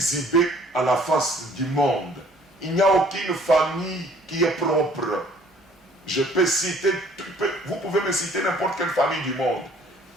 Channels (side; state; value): both; normal; correlation 0.57